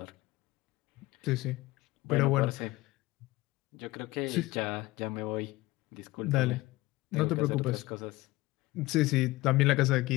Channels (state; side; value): quieter; right; 19.8 dB